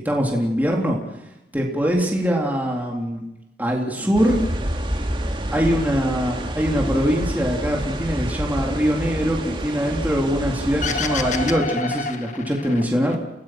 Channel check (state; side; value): normal; both; correlation 0.80